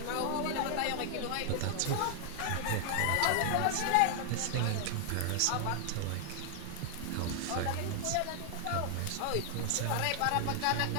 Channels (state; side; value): different; both; correlation 0.00